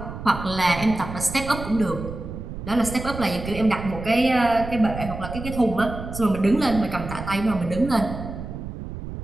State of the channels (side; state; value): right; noise; rumble, 9 dB below the sound